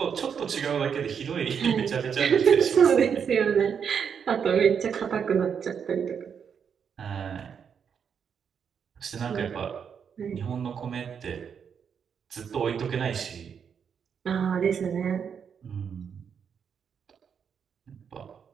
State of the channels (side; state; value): left; quieter; 7.2 dB